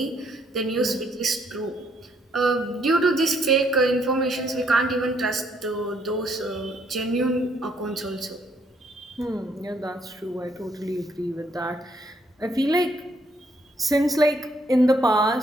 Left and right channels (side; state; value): both; normal; correlation 0.69